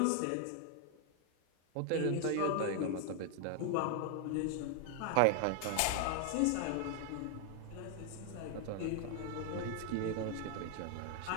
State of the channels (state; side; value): different; both; correlation 0.00